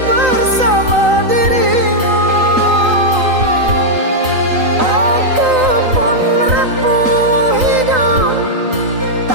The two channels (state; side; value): late; left; 3.9 ms